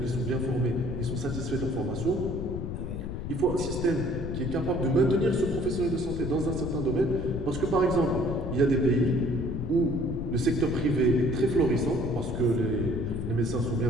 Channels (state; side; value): noise; left; rumble, 5 dB below the sound